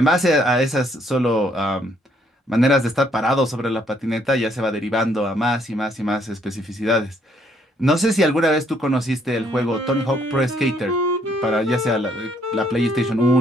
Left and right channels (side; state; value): both; normal; correlation 0.68